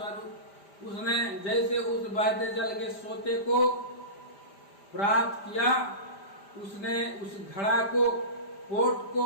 उसने जैसे उस बहते जल के सोते को प्राप्त किया, उसने उस घड़ा को, पोट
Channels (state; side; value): late; right; 5.0 ms